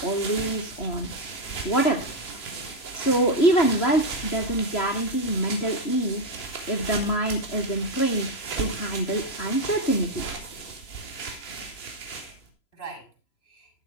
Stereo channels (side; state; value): right; late; 3.0 ms